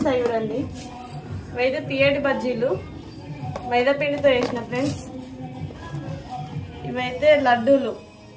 చూడండి. ఇవైతే తీయటి బజ్జీలు మైదా పిండితో చేసిన ఫ్రెండ్స్. ఇవైతే లడ్డూలు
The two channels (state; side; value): identical; both; correlation 1.00